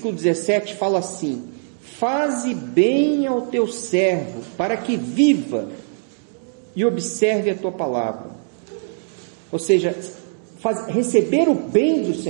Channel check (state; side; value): silent; left; digital silence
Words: 17, fala assim, faze bem ao teu servo, para que viva e observe a tua palavra. Ou seja, receber o bem do